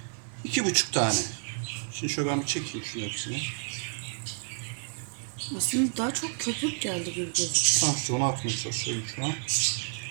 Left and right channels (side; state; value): left; silent; 56 dB below the other